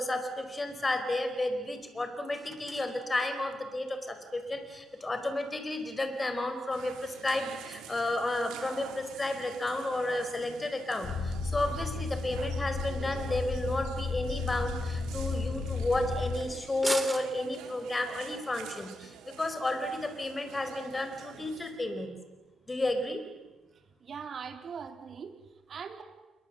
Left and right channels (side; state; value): both; normal; correlation 0.88